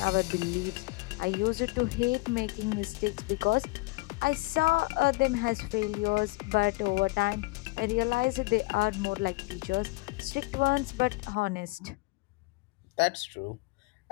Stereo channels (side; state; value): right; quieter; 25.1 dB